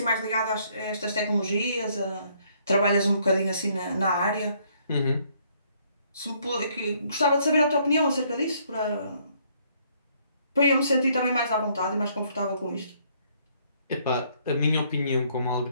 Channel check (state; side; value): inverted; both; correlation -0.67